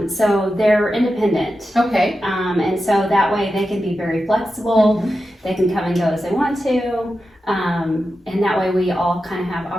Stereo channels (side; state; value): both; normal; correlation 0.91